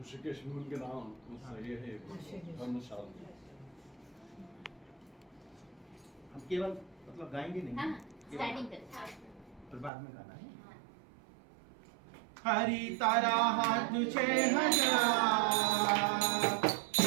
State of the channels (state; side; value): drops out; left; at 9.9 s